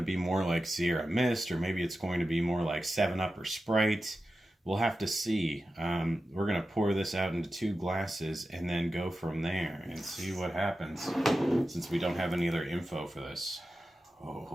be more like Sierra Mist, or maybe it's going to be more like 7-Up or Sprite. We'll have to see. We're going to pour this out into 2 glasses and then go from there and see what happens, since we don't have any other info for this.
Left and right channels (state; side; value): normal; both; correlation 0.92